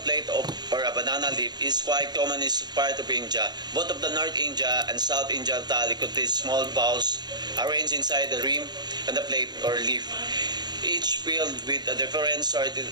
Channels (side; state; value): left; late; 0.20 ms